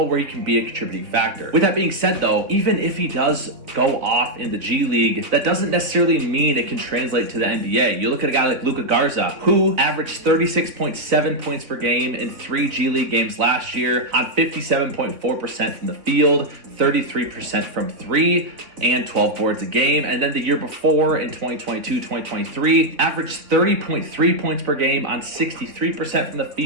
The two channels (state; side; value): late; left; 3.4 ms